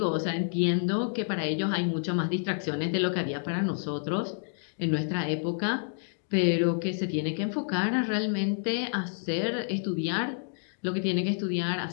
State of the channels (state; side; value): silent; right; digital silence